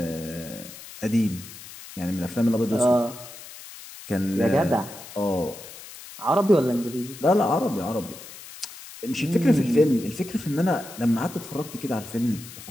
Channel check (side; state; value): left; noise; hiss, 15 dB below the sound